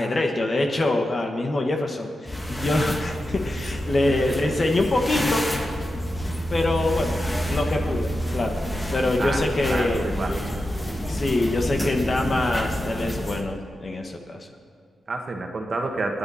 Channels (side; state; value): both; normal; correlation 0.90